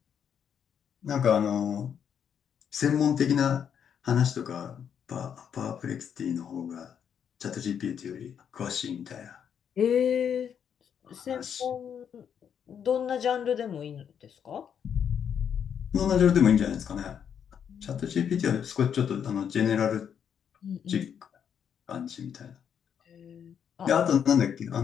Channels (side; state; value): right; quieter; 8.1 dB